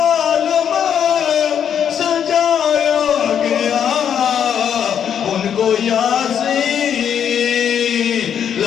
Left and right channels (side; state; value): right; quieter; 8.6 dB